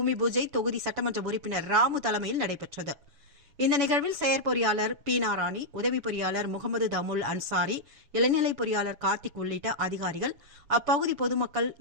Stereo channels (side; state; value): left; late; 7.0 ms